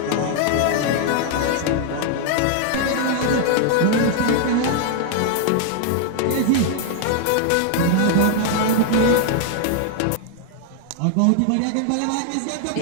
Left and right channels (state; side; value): different; both; correlation 0.00